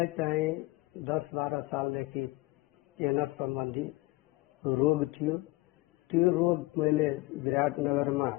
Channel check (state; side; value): quieter; right; 22.2 dB